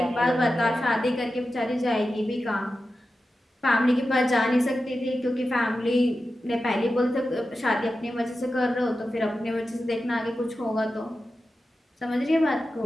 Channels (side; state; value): both; normal; correlation 0.92